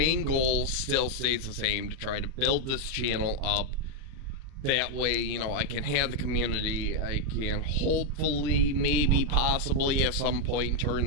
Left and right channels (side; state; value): left; late; 38 ms